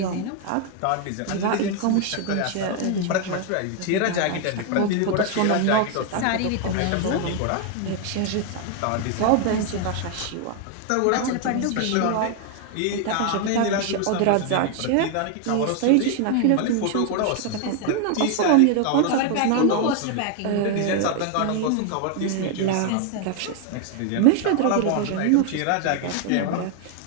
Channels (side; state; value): both; different; correlation 0.00